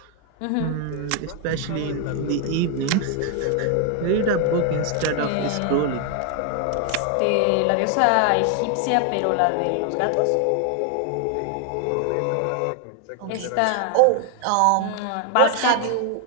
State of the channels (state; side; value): different; both; correlation 0.01